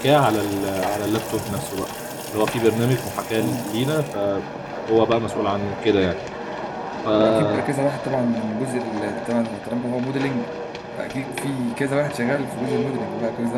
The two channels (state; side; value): identical; both; correlation 1.00